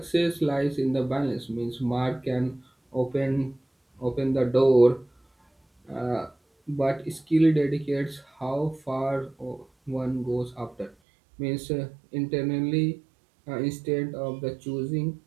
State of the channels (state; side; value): drops out; left; at 11.0 s